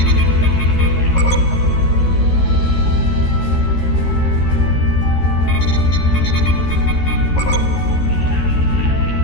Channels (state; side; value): late; right; 13 ms